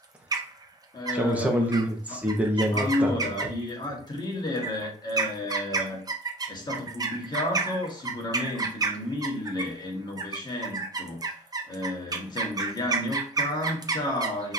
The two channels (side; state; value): both; normal; correlation 0.38